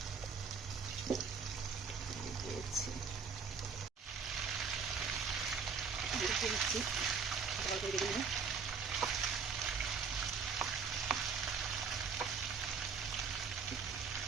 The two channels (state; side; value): quieter; left; 5.7 dB